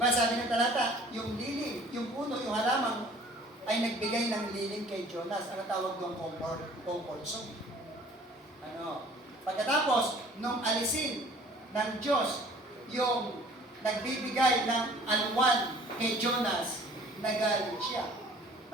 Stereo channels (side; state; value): both; normal; correlation 0.52